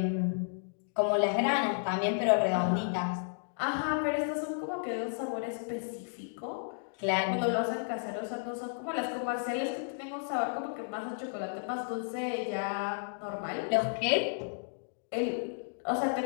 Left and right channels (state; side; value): silent; right; digital silence